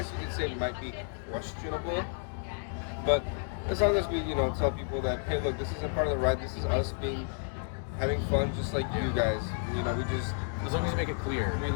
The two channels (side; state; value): right; silent; 57 dB below the other